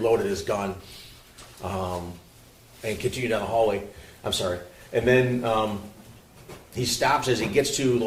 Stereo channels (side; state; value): both; identical; correlation 1.00